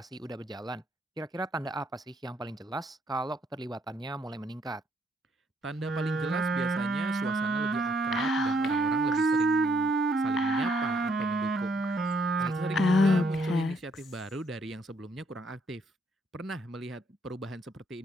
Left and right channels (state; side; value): normal; both; correlation 0.70